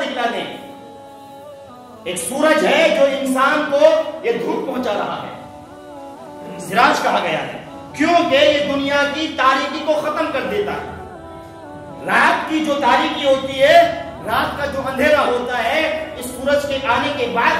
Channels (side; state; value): both; identical; correlation 1.00